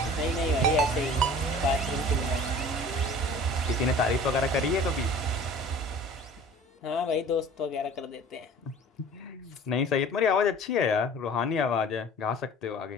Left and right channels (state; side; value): normal; both; correlation 0.45